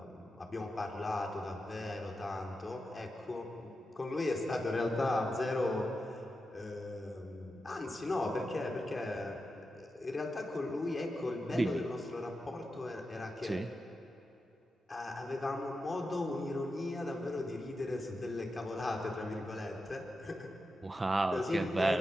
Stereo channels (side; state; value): both; normal; correlation 0.89